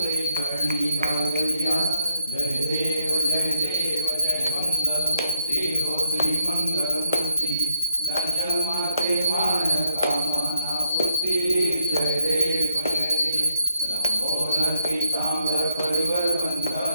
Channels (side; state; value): both; inverted; correlation -0.77